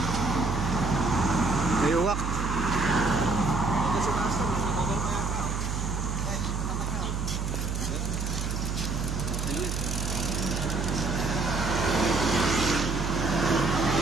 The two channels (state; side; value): noise; right; hum, 2 dB below the sound